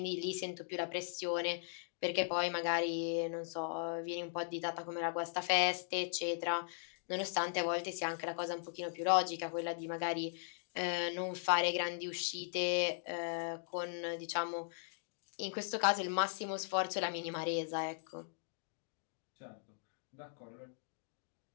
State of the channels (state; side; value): silent; right; digital silence